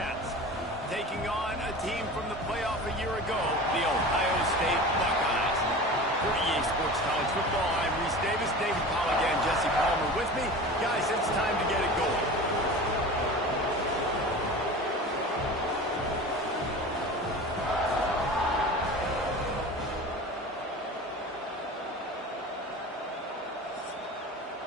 taking on a team from the playoff a year ago, the Ohio State Buckeyes. For EA Sports College Football, I'm Reese Davis, David Pollack, and Jesse Palmer with me. Guys, it's time to get it going.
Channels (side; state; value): both; normal; correlation 0.35